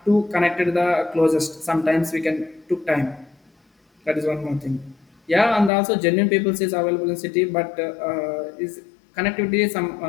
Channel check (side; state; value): right; drops out; at 5.7 s